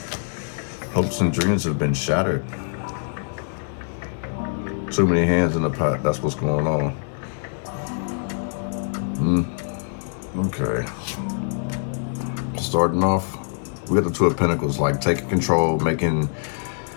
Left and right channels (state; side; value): silent; right; digital silence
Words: Hopes and dreams have been shattered. Too many hands in the pot, that's what's going on. Okay. Starting off, we got the 2 of Pentacles, like taking control, making